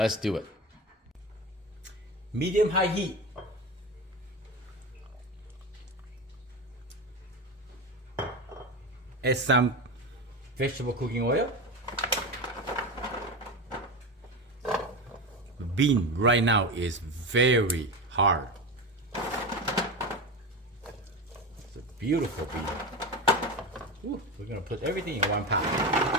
do it. Medium high heat. Add some vegetable cooking oil. The bean right now is very hard. It's a beautiful bean. Ooh, we're gonna put everything in one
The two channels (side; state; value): both; normal; correlation 0.22